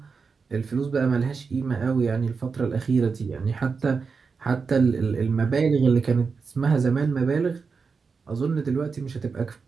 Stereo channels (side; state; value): left; quieter; 5.1 dB